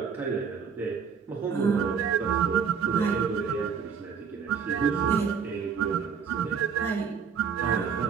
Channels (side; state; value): left; quieter; 6.5 dB